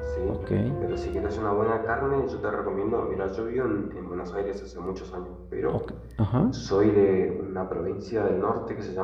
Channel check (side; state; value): both; identical; correlation 1.00